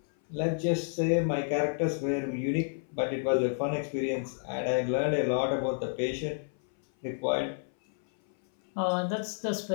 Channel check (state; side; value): silent; right; 58 dB below the other